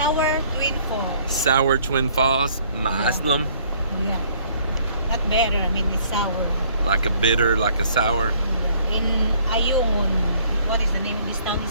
Twin Falls. Sour Twin Falls Muslim. Yeah. Not better, I mean it's sour. Like a bitter, like a sour. In Ayungin. What is the name of this town?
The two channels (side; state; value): both; inverted; correlation -0.60